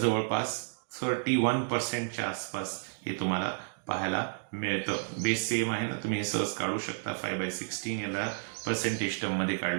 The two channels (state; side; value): silent; left; digital silence